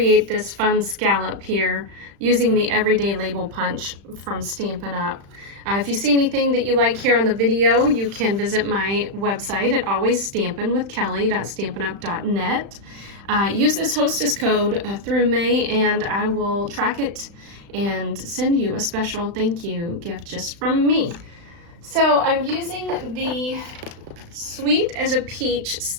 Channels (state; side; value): late; left; 35 ms